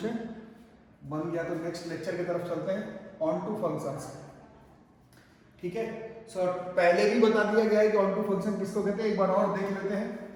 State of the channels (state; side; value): identical; both; correlation 1.00